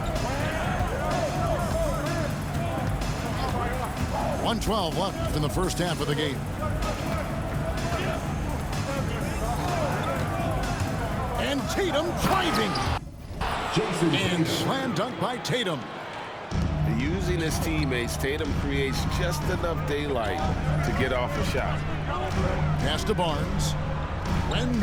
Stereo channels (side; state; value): both; identical; correlation 1.00